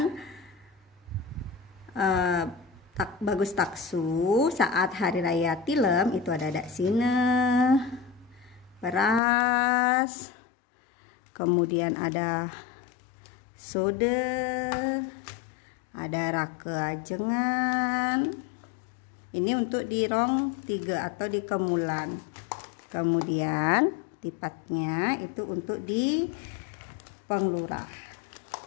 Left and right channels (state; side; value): drops out; right; at 9.2 s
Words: Bagus Taksu saat Hari Raya Tilem itu ada daksine, beras, kemudian ada sode, ada rake ajengan. Ini untuk di rong 3 atau di kemulan. Kemudian tipatnya itu untuk di Penglurah.